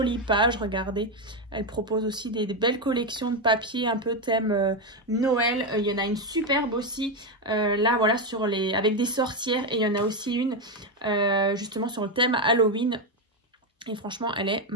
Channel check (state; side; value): normal; both; correlation 0.08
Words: pages. Regardez, elle propose aussi des belles collections de papier un peu thème Noël. Il y en a une superbe aussi là, voilà, sur avec des sorcières, et il y en a aussi une justement sur le thème Halloween, et franchement elle est